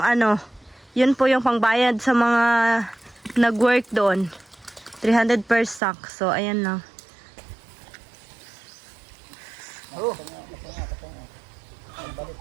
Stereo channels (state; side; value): drops out; left; at 5.8 s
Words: yun po yung pangbayad sa mga nag-work doon. 300 per sack. So, ayan lang.